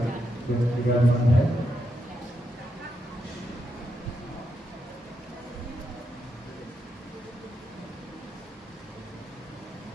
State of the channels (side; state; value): both; normal; correlation 0.83